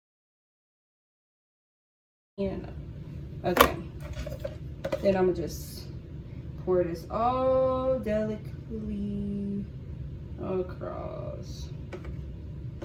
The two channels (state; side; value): identical; both; correlation 1.00